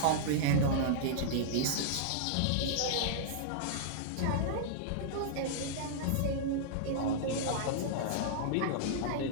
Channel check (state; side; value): different; both; correlation -0.02